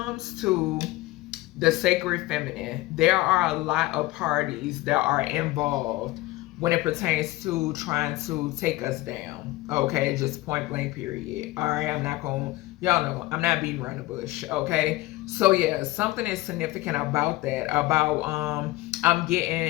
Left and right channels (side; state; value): right; quieter; 18.6 dB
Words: to the sacred feminine, there are a lot of parties that are involved when it pertains to trying to take us down. Okay, just point blank period. All right, I'm not gonna, y'all know I'm not beating around the bush. Okay, so yeah, something is significant about that. About I'm